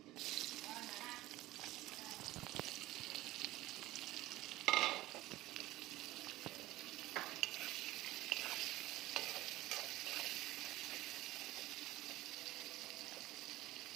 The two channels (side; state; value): left; quieter; 17.1 dB